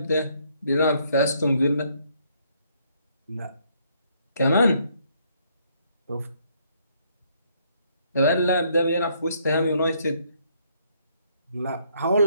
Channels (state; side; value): inverted; both; correlation -0.69